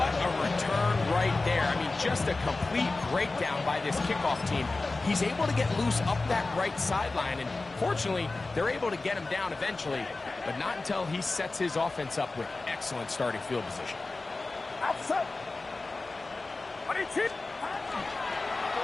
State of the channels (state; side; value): quieter; right; 3.4 dB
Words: a return right there. I mean, just a complete breakdown by this kickoff team. He's able to get loose up that right sideline, and fortunately, they're able to get him down eventually, but not until he sets his offense up with excellent starting field position. Outside. What is it?